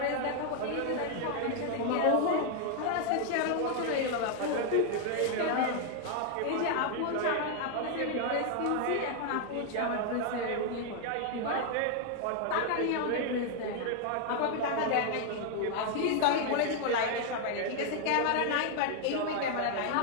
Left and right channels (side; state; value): both; different; correlation 0.00